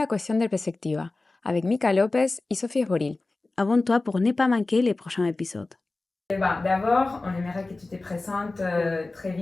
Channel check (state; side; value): quieter; right; 3.2 dB